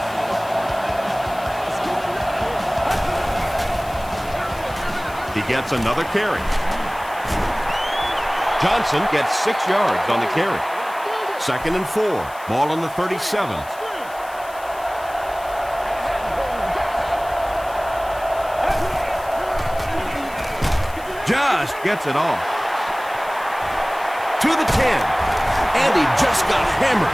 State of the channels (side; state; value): left; noise; hiss, 20 dB below the sound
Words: He gets another carry. Johnson gets 6 yards on the carry. 2nd and 4. Ball on the 37. Just gets it off. To the 10. And he just got hammered.